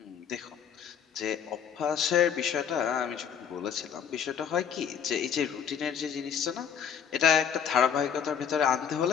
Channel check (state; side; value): quieter; right; 7.9 dB